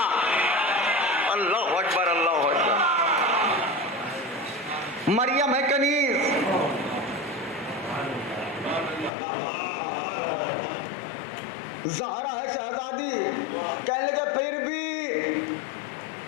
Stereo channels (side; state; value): right; drops out; at 9.1 s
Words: अल्लाह अकबर, अल्लाह अकबर। मरियम है कनीज, ज़हरा है शहजादी। कहने लगे फिर भी